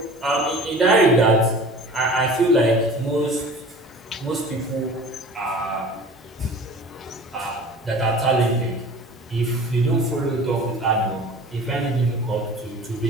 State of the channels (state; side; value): normal; both; correlation 0.42